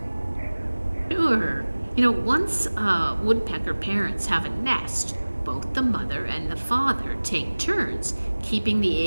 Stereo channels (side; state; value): both; inverted; correlation -1.00